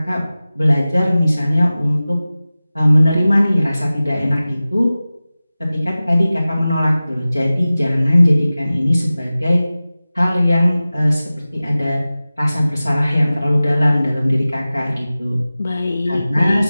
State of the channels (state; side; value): inverted; both; correlation -0.97